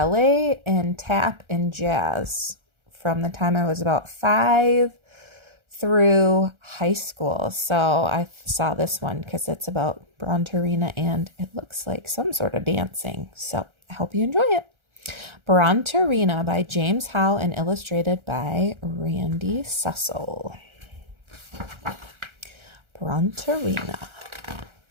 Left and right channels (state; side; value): late; left; 1.4 ms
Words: and tap and jazz from the time I was about 5 through high school. So I saw this one because it's about Bronterina and it looks like some sort of dancing. So I hope you enjoy it. Bronterina by James Howe and illustrated by Randy Sussel. Bronterina.